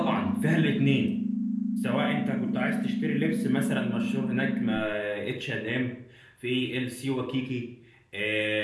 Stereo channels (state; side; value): identical; both; correlation 1.00